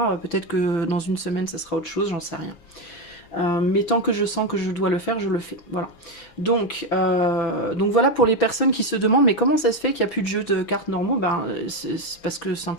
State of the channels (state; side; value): late; right; 6.0 ms